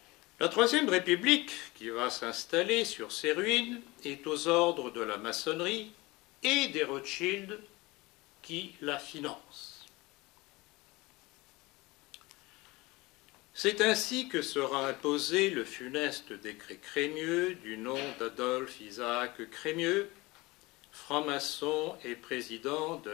La Troisième République, qui va s'installer sur ses ruines, est aux ordres de la maçonnerie et des Rothschild qui la financent. C'est ainsi que sera imposé le funeste décret Crémieux du nom d'Adolphe Isaac Crémieux, franc-maçon et président de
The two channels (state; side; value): quieter; right; 22.1 dB